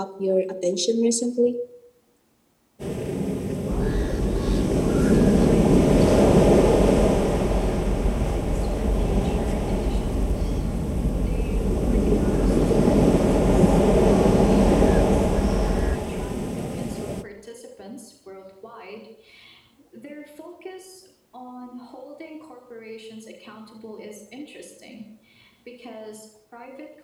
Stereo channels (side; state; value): both; identical; correlation 1.00